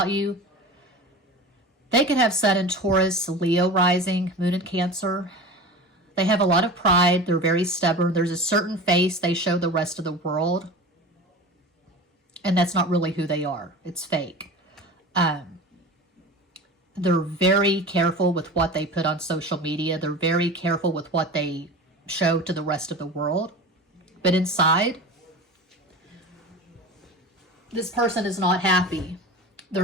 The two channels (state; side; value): normal; both; correlation 0.33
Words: you, they could have Sun in Taurus, Leo rising, Moon in Cancer. They have a lot of pride. They're very stubborn. There's a certain face they show the rest of the world, and that's not really who they are. It's fake. They're very careful with what they put on social media. They're very careful with what they show to the rest of the world. But inside, this person is not happy.